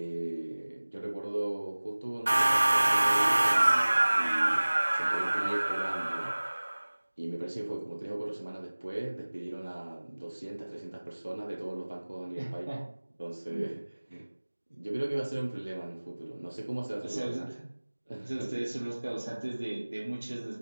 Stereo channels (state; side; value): inverted; both; correlation -1.00